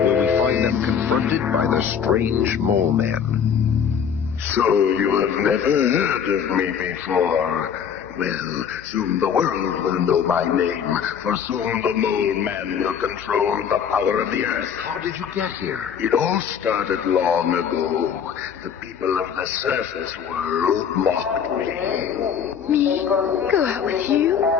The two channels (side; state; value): right; quieter; 7.7 dB